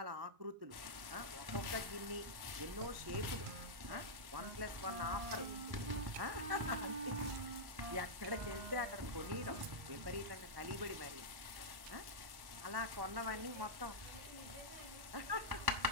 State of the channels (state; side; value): late; left; 1.1 ms